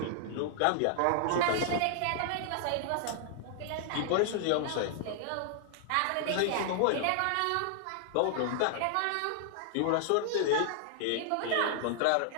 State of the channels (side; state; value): both; different; correlation 0.00